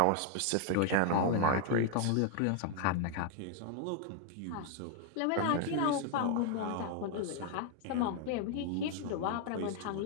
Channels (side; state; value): both; different; correlation 0.00